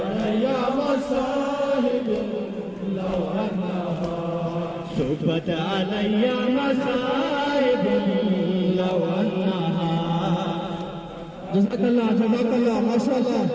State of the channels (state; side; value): identical; both; correlation 1.00